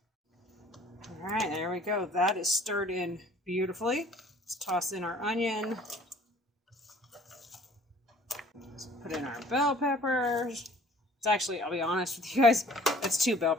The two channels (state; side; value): normal; both; correlation 0.54